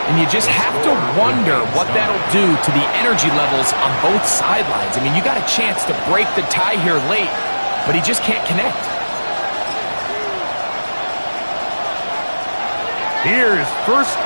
And you just have to wonder what that'll do to the energy levels on both sidelines. I mean, you got a chance to break the tie here late, but he just can't connect. Here's 1st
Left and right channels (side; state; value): both; inverted; correlation -1.00